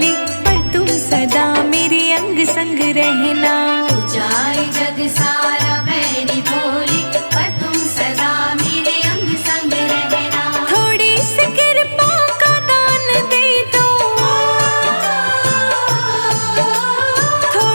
पर तुम सदा मेरे अंग संग रहना, जाए जग सारा बैरी भोली, पर तुम सदा मेरे अंग संग रहना। थोड़ी सी कृपा का दान दे दो,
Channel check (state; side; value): inverted; both; correlation -1.00